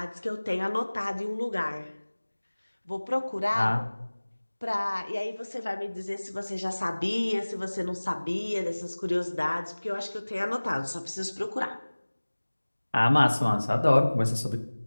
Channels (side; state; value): both; inverted; correlation -1.00